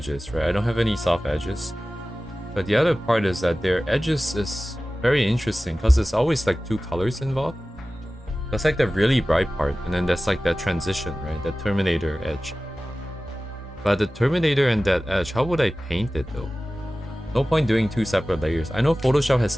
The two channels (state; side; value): normal; both; correlation 0.96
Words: right? I don't have any soft edges. But the other part is that their edges is very interesting because there's always like two colors involved. That's like the really bright part, and then that's like that transition, right? The Terminator edge. But the Terminator and that edge, how would I paint it though? No point doing two separate layers. I know Photoshop has